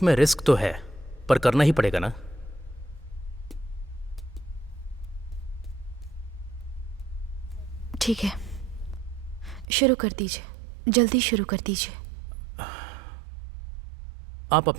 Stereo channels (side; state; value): left; drops out; at 9.7 s